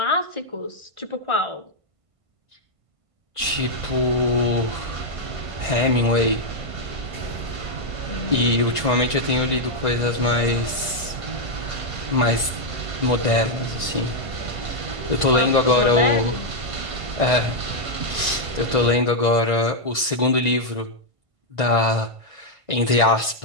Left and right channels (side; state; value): left; late; 1.5 ms